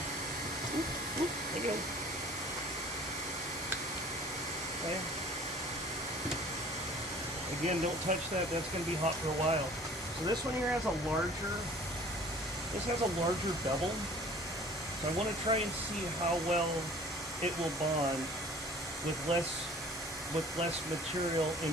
There you go. Okay. Again, don't touch that. That's going to be hot for a while. So this one here has a larger bevel. So I want to try and see how well it will bond with less material and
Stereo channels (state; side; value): normal; both; correlation 0.48